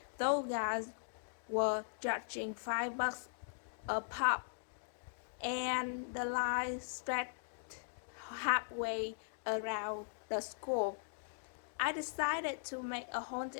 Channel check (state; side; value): silent; right; digital silence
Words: Those guys were charging $5 a pop, and the line stretched halfway around the school. I decided to make a